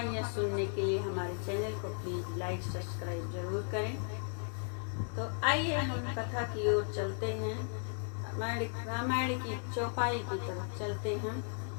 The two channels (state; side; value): silent; right; 54 dB below the other